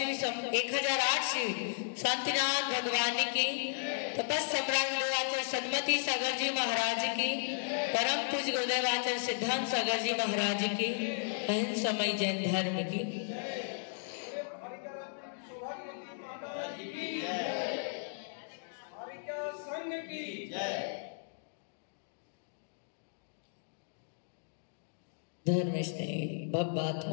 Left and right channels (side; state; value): right; silent; digital silence